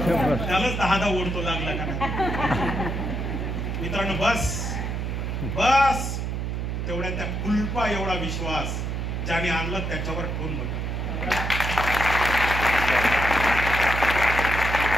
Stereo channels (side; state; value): right; noise; hum, 2 dB below the sound